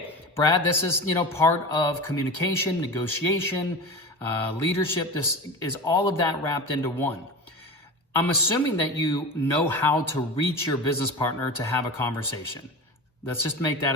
Brad, this is, part of communication, negotiation, leadership. This is all of that wrapped into one. I'm assuming that you know how to reach your business partner to have a conversation. Let's just make that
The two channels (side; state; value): both; normal; correlation 0.29